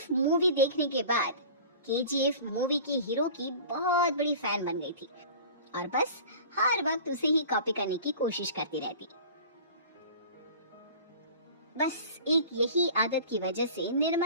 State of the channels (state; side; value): inverted; both; correlation -0.41